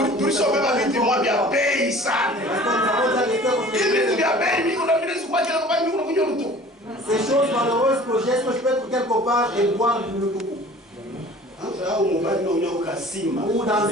Tu sauves ma vie, tu m'as bien payé ça. Ces choses malheureuses que j'ai, est-ce que je peux être quelque part et boire du tout? Ou dans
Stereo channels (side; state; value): both; normal; correlation 0.46